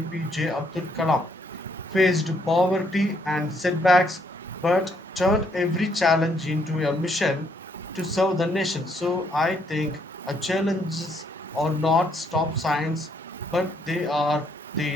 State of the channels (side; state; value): both; normal; correlation 0.71